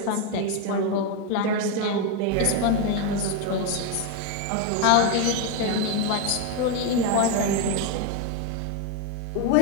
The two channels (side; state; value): both; different; correlation 0.02